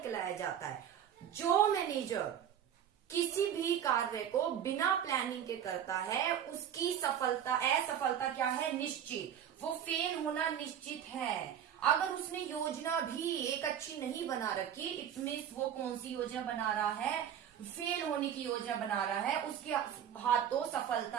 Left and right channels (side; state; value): left; quieter; 9.4 dB